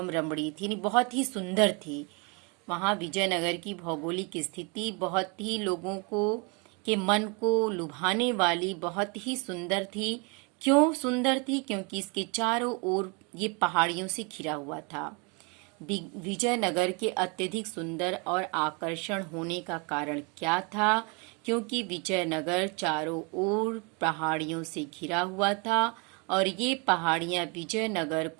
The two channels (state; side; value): quieter; left; 32.0 dB